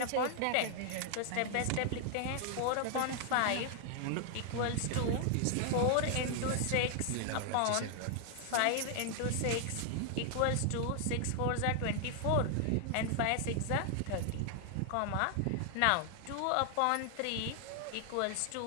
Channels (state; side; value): different; both; correlation 0.00